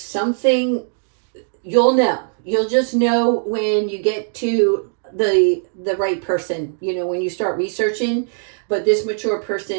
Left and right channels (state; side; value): silent; left; digital silence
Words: You'll just know when you get to the right person, when you start researching, but this mature